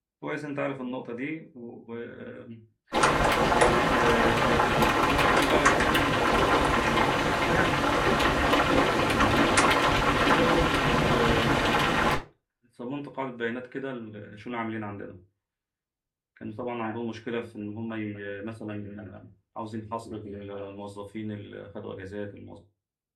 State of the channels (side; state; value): both; identical; correlation 1.00